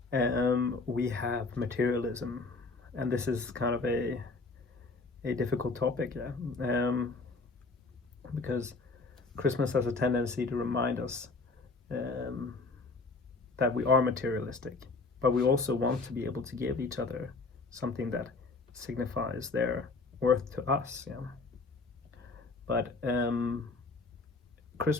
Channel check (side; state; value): right; quieter; 3.8 dB